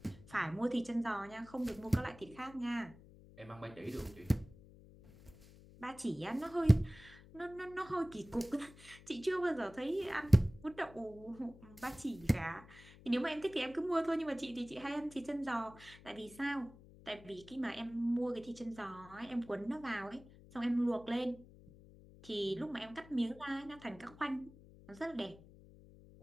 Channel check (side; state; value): left; noise; hum, 20 dB below the sound